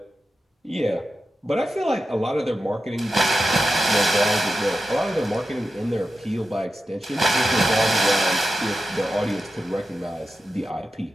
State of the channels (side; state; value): both; normal; correlation 0.91